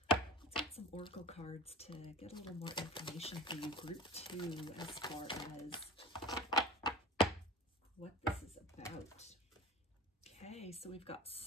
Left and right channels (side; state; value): both; normal; correlation 0.36